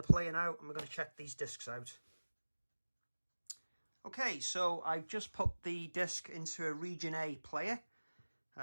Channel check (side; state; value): both; inverted; correlation -1.00